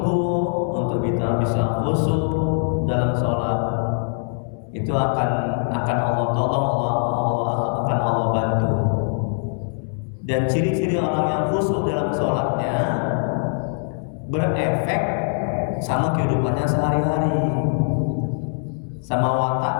untuk kita bisa khusyuk dalam sholat, itu akan Allah tolong, akan Allah bantu. Dan ciri-ciri orang yang khusyuk dalam sholatnya berefek sama kehidupannya sehari-hari, sama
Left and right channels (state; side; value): silent; right; 64 dB below the other